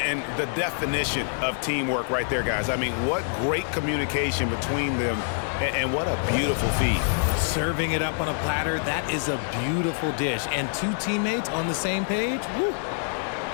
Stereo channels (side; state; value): right; silent; digital silence